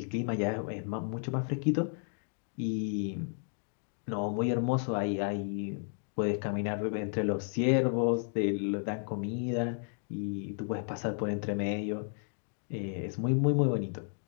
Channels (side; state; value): right; silent; 56 dB below the other